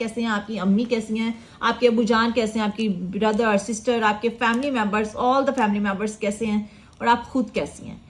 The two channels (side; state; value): both; identical; correlation 1.00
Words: हैं, आपकी अम्मी कैसी हैं, आपके अबूजान कैसे हैं, आपकी ब्रदर सिस्टर, आपके family members, all the family members कैसे हैं और आप खुद कैसी हैं।